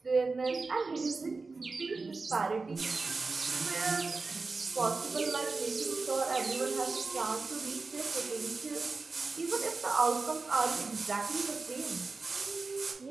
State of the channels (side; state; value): left; quieter; 4.0 dB